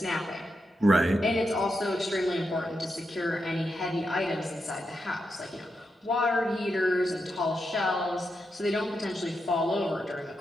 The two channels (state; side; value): normal; both; correlation 0.85